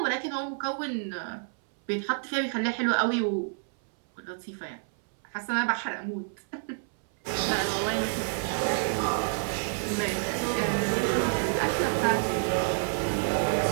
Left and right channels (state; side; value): silent; left; 59 dB below the other